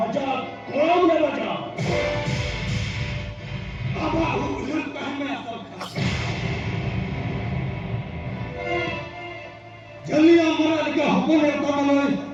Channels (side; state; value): both; identical; correlation 1.00